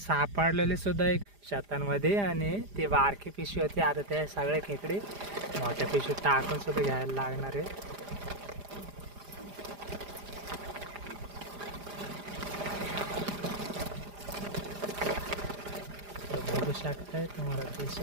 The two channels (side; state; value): left; late; 4.9 ms